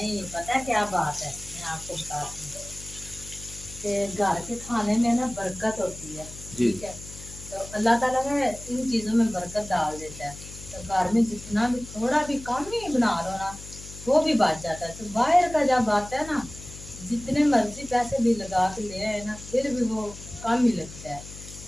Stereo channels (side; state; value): left; noise; hum, 15 dB below the sound